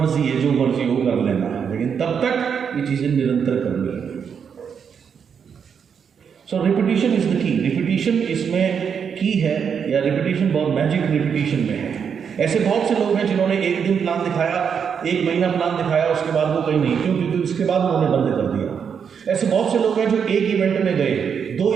है, जो मर्जी हो कर लेना है, लेकिन तब तक ये चीजें निरंतर करनी है। So repetition is the key. Repetition इसमें की है, या रिपीटिशन बहुत मैजिक रिपीटिशन में है। ऐसे बहुत से लोग हैं जिन्होंने एक दिन प्लान दिखाया, 1 महीना प्लान दिखाया, उसके बाद वो कहीं नहीं, क्यों? क्योंकि उसके बाद उन्होंने बंद कर दिया। ऐसे बहुत से लोग हैं जो 1 इवेंट में गए, 2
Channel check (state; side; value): quieter; left; 7.0 dB